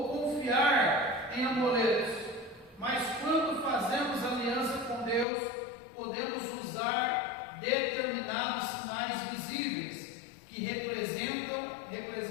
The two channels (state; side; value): drops out; right; at 5.2 s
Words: confiar em amuletos, mas quando fazemos aliança com Deus, podemos usar determinados sinais visíveis que